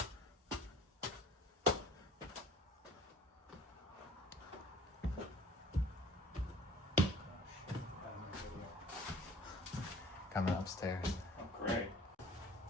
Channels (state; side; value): normal; both; correlation 0.50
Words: Coming upstairs. Oh, great.